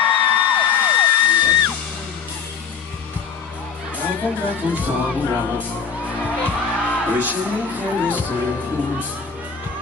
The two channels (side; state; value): right; quieter; 6.3 dB